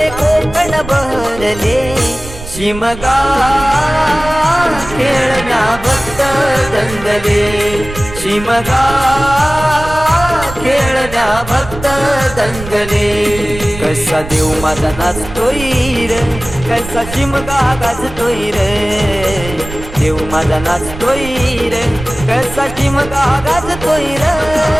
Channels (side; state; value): right; noise; rumble, 12 dB below the sound